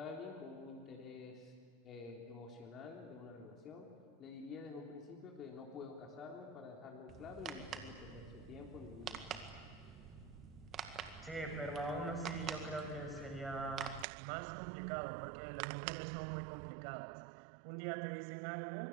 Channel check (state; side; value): drops out; left; at 14.1 s